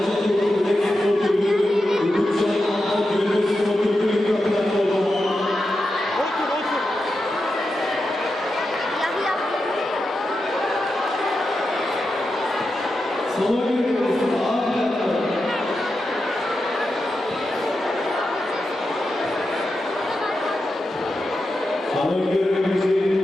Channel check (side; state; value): both; normal; correlation 0.89